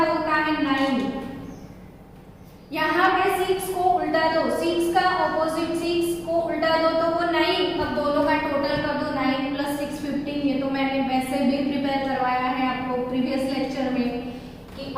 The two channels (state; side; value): identical; both; correlation 1.00